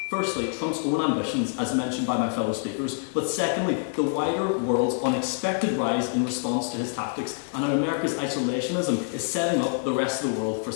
Firstly, Trump's own ambitions, as mentioned by my fellow speakers, but secondly, the wider world's unexpected rise in response to his tactics and how America's isolationism is setting up the rest of the world for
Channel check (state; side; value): silent; right; 61 dB below the other